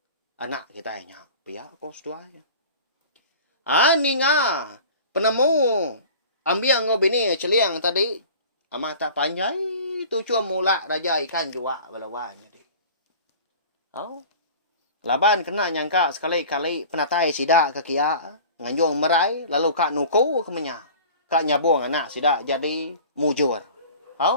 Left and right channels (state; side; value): inverted; both; correlation -0.41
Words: anak kita yang pihak kos dua ninga penemu ambil ngau bini celiang tadi amat tak panjai tu cuma mula raja ikan juga belawan jadi. Laban kena nyangka sekali-kali penatai sida ke kia nganjung merai lalu kak nuku ke menya. Kak nyabung anak sida jadi mujur.